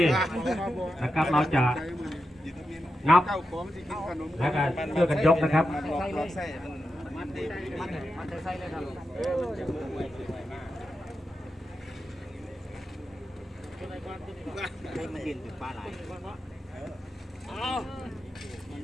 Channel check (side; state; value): both; normal; correlation 0.89